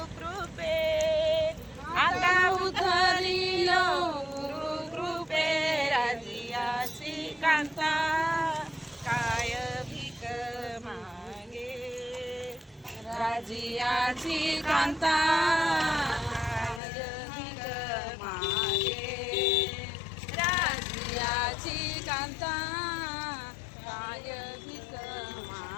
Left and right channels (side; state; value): right; drops out; at 16.8 s